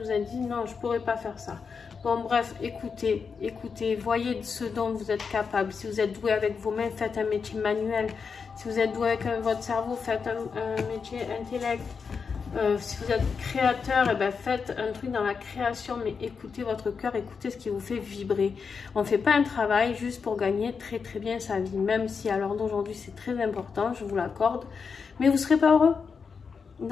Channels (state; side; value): quieter; right; 5.6 dB